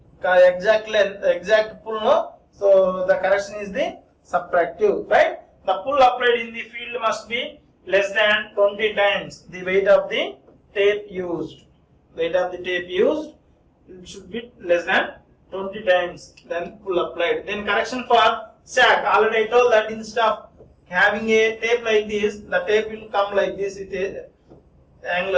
exact length, exact pull, no, so the correction is the subtractive. Right? The pull applied in the field must be less than 20 times the weight of the tape used. Weight of the tape used, it should be less than 20 times then pull applied. Then correction for sag. Already I told that instead of having a tape like this, the tape will come like this with a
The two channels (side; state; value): both; identical; correlation 1.00